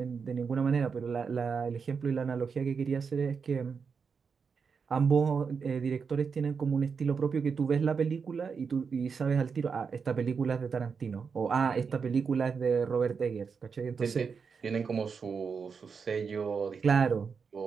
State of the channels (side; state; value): left; quieter; 5.7 dB